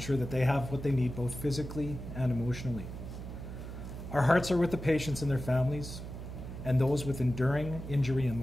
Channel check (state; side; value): noise; right; hum, 9 dB below the sound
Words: that they have what they need both physically and emotionally. Our hearts are with the patients and their families and those with enduring injury and